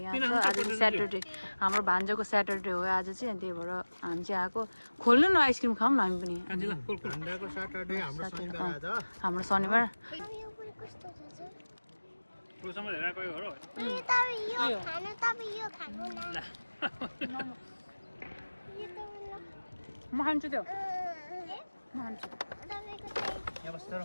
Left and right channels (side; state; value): both; inverted; correlation -1.00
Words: छ आज चाहिँ स्याटरडे हाम्रो भान्जाको स्याटरडे हो आज चाहिँ अनि त्यही भएर हामी चाहिँ आको खोल्नु न आइसक्रिम खाऊँ न हामी पनि भान्जाको स्याटरडे हाम्रो शनिबार आज हाम्रो शनिबार पुरुषमा हेरेर गयो हो म खान्छु त्यो म खान्छु यहाँ बस्छ र